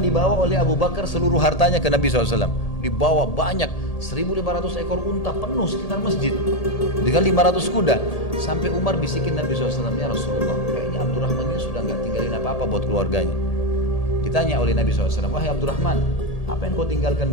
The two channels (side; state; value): right; late; 1.8 ms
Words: dibawa oleh Abu Bakar seluruh hartanya ke Nabi SAW. Dibawa banyak, 1.500 ekor unta penuh sekitar masjid dengan 500 kuda. Sampai Umar bisikin Nabi SAW, ya Rasulullah, kayaknya Abdurrahman ini sudah nggak tinggalin apa-apa buat keluarganya. Ditanya oleh Nabi SAW, wahai Abdurrahman, apa yang kau